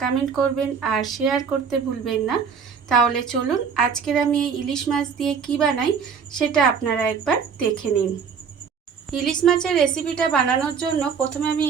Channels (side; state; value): left; quieter; 6.4 dB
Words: কমেন্ট করবেন আর শেয়ার করতে ভুলবেন না। তাহলে চলুন আজকের আমি এই ইলিশ মাছ দিয়ে কি বানাই সেটা আপনারা একবার দেখে নিন। ইলিশ মাছের রেসিপিটা বানানোর জন্য প্রথমে আমি